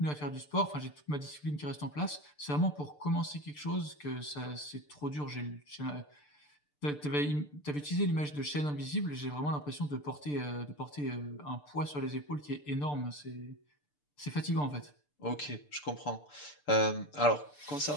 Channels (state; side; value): late; right; 6.8 ms